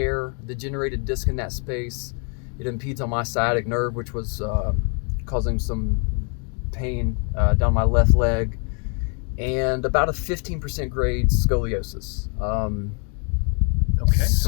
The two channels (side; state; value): right; quieter; 39.2 dB